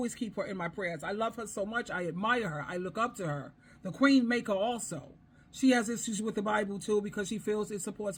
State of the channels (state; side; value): identical; both; correlation 1.00